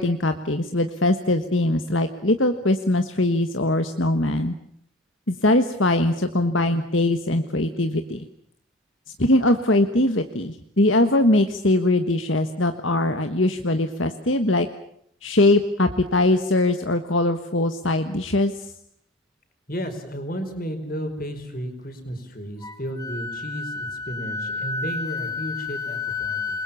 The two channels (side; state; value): both; normal; correlation 0.37